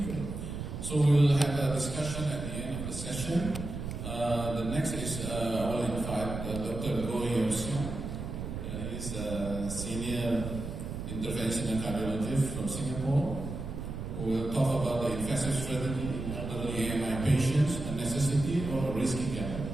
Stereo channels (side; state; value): right; noise; rumble, 6 dB below the sound